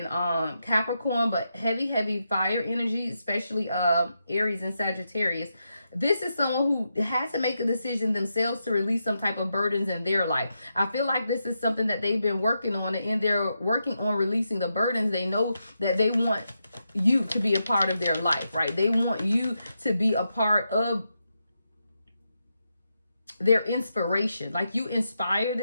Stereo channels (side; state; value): both; inverted; correlation -0.85